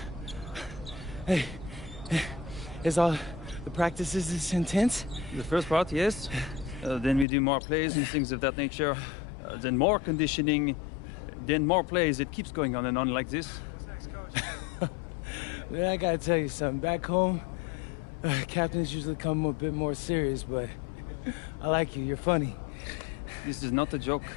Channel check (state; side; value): drops out; right; at 7.2 s